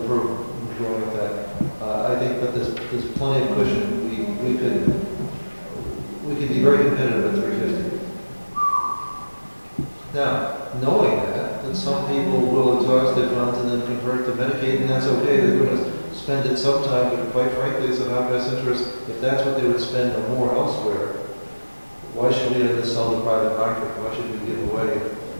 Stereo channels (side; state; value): both; inverted; correlation -1.00